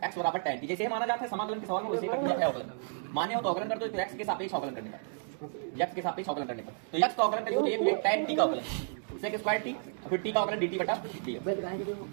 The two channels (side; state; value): left; silent; digital silence